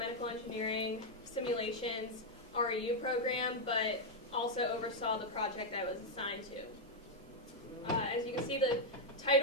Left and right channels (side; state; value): both; normal; correlation -0.01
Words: engineering simulations REU program, but also oversaw the project I was assigned to. As you can see, the